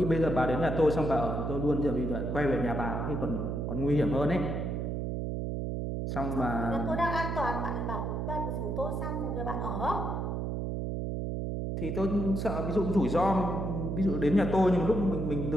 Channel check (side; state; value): right; noise; hum, 2 dB below the sound